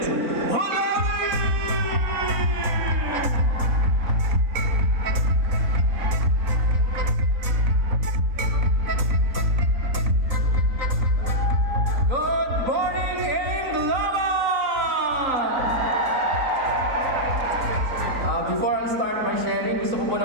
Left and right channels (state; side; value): late; left; 3.9 ms